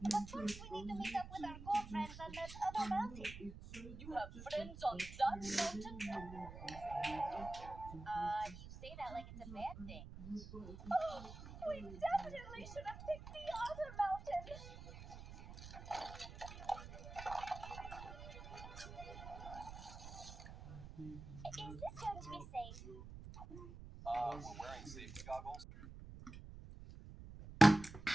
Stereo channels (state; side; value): noise; right; rumble, 12 dB below the sound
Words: but first we need to meet up with our ghoul friends on that other mountain. You have friends on that mountain? You say that like it's a bad thing. Oh, we definitely should have picked the other mountain. Is this going to be safe? We're wearing safety goggles.